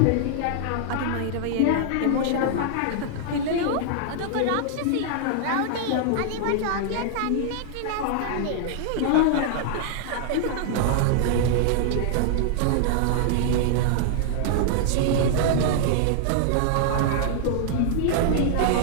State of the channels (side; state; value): both; different; correlation -0.01